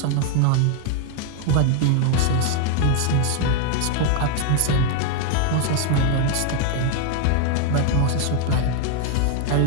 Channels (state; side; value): different; both; correlation 0.00